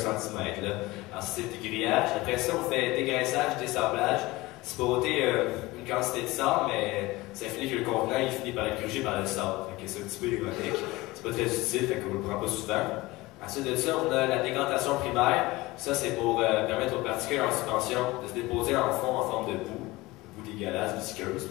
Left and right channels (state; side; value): quieter; right; 20.6 dB